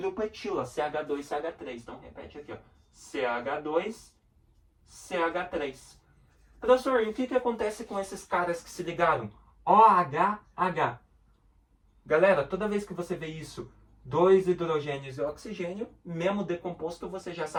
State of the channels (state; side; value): identical; both; correlation 1.00